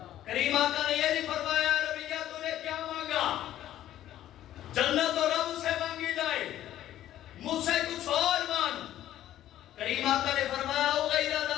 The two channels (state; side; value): quieter; right; 12.7 dB